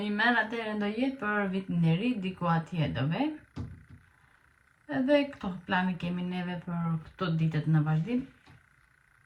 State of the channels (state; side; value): identical; both; correlation 1.00